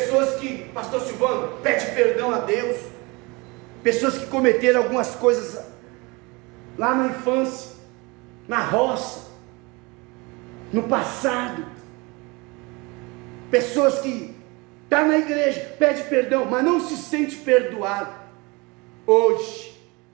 que, pastor Silvano, pede perdão a Deus, pessoas que cometeram algumas coisas lá na infância, na roça, no passado, pessoas que estão na igreja, pede perdão, mas não se sente perdoado. Hoje,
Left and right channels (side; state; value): left; quieter; 26.3 dB